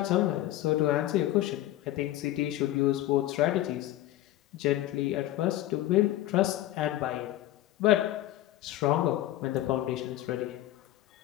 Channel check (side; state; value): right; quieter; 14.6 dB